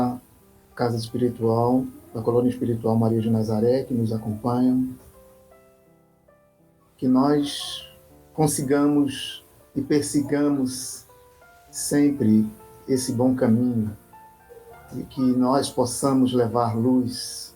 Casa Espiritual, da Colônia Espiritual Maria de Nazaré, que nos acompanham, que nós consigamos e persigamos sempre esse bom caminho e que nós possamos levar luz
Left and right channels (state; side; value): identical; both; correlation 1.00